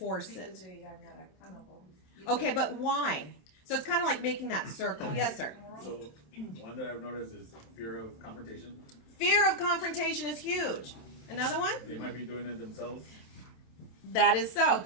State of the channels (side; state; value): right; late; 27 ms